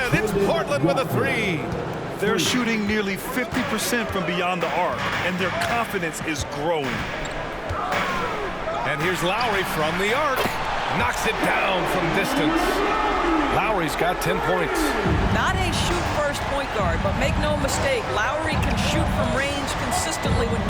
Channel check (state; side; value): identical; both; correlation 1.00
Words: it's Portland with a 3. They're shooting nearly 50% from beyond the arc, and their confidence is growing. And here's Lowry from the arc. Knocks it down from distance. Lowry's got 10 points. Not a shoot-first point guard, but make no mistake, Lowry can shoot from range consistently when